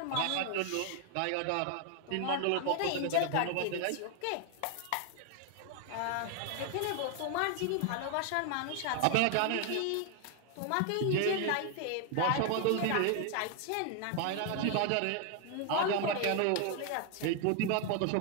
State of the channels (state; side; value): different; both; correlation 0.00